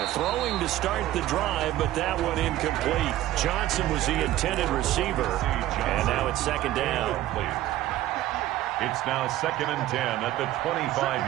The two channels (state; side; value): quieter; left; 14.5 dB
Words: Throwing to start the drive, but that one incomplete. Johnson was the intended receiver, and now it's second down. It's now 2nd and 10 at the